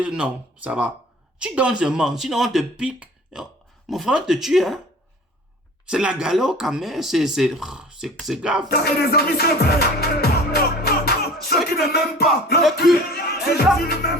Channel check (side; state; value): both; normal; correlation 0.43